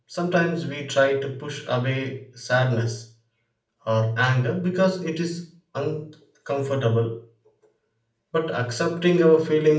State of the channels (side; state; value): both; identical; correlation 1.00